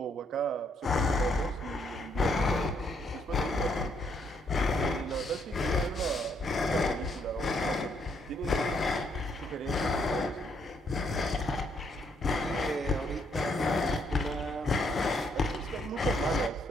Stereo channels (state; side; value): normal; both; correlation 0.72